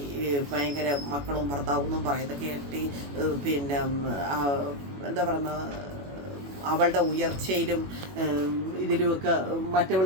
ഭയങ്കര മക്കളും ഭർത്താവെന്നും പറയുന്നത് കേട്ടി പിന്നെ എന്താ പറയുന്ന അവളുടെ ഉയർച്ചയിലും ഇതിലുമൊക്കെ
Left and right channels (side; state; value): left; late; 21 ms